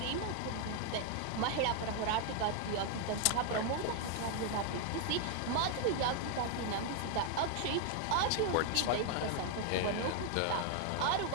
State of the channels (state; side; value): different; both; correlation 0.00